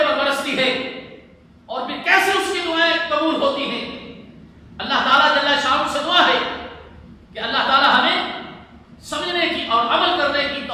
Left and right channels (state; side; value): identical; both; correlation 1.00